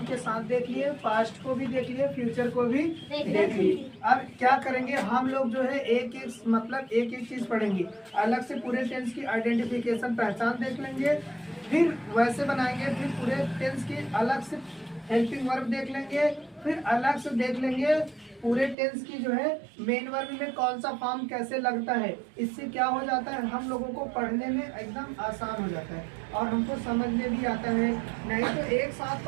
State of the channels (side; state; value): left; drops out; at 18.8 s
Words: के साथ देख लिए, पास्ट को भी देख लिए, फ्यूचर को भी देख लिए। अब क्या करेंगे हम लोग जो है एक एक चीज पढ़ेंगे। अलग से पूरे टेंस की आइडेंटिफिकेशन, पहचान देख लेंगे, फिर वैसे बनाएंगे, फिर पूरे टेंस की अलग से हेल्पिंग वर्ब देख लेंगे, फिर अलग से देख लेंगे पूरे टेंस की जो है मेन वर्ब में कौन सा फॉर्म कैसे लगता है। इससे क्या हो जाता है, हम लोगों को पढ़ने में एकदम आसान हो जाता है और हमको समझ में भी आता है। नहीं तो एक साथ